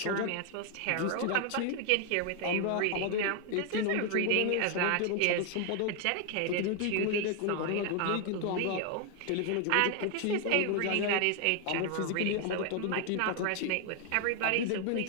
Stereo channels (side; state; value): both; different; correlation 0.01